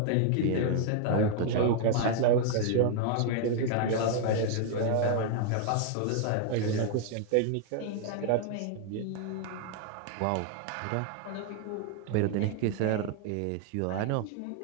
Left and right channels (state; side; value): different; both; correlation 0.00